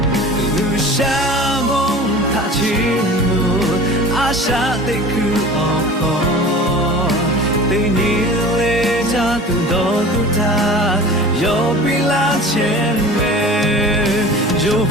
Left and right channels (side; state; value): both; normal; correlation 0.39